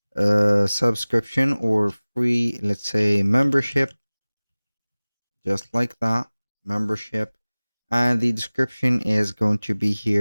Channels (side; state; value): both; inverted; correlation -1.00